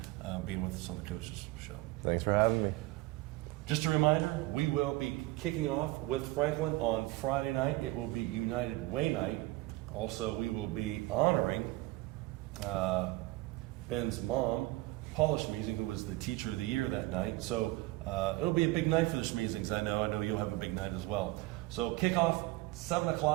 being with us on the Coaches Show. Thanks for having me. Just a reminder, we will be kicking off with Franklin on Friday night. It will be United Way night. Also, we will be honoring Ben's mom, Paula Schmeezing, who was the Teacher of the Year that night. So it'll be a big night for the Schmeezings. I know you'll have a big night as well. So kickoff 7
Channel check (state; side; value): quieter; left; 19.7 dB